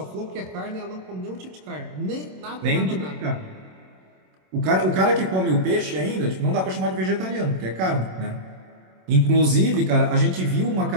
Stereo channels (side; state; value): left; late; 27 ms